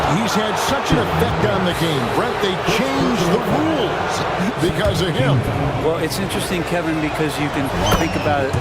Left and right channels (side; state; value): both; identical; correlation 1.00